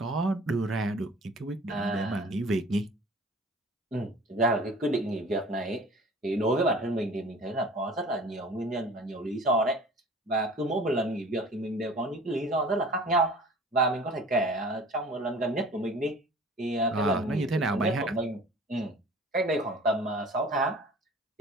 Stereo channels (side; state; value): both; normal; correlation 0.45